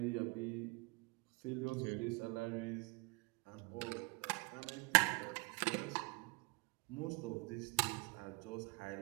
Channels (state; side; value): quieter; left; 27.3 dB